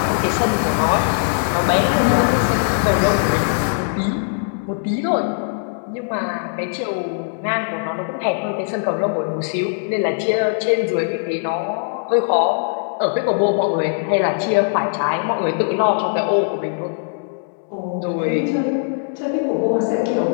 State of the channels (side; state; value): right; silent; digital silence